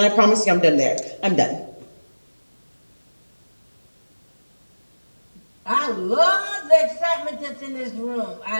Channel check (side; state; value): both; inverted; correlation -1.00